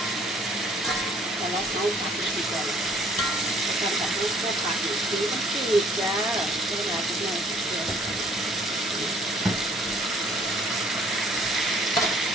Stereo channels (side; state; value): both; normal; correlation 0.60